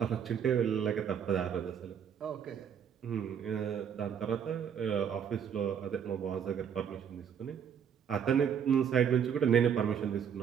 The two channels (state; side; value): quieter; left; 8.0 dB